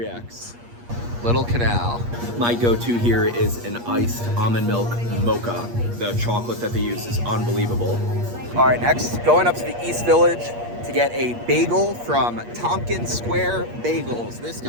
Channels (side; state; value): left; late; 8.5 ms